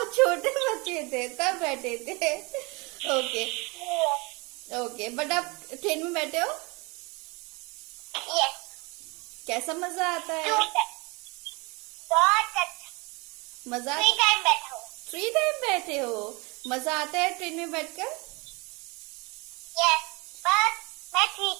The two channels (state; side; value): quieter; left; 27.5 dB